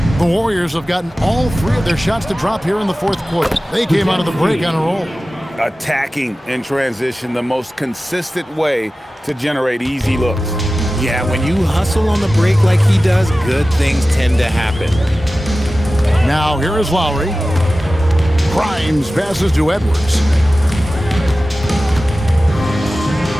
The Warriors have gotten all 3 of their shots to drop here in the fourth quarter. They came out of the break on a roll. Attacking in transition, the most consistent way to generate easy looks. Yeah, when you hustle on the break like he does, good things tend to happen. Now here is Lowry. Grimes passes to Edwards.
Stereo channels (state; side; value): normal; both; correlation 0.95